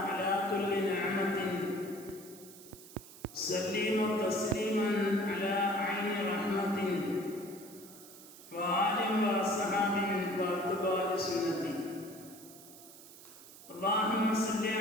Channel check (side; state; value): right; noise; hiss, 18 dB below the sound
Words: على كل نعمة، سليم تسليما على عين رحمة، وآل وأصحاب واتباع سنتي. اللهم صل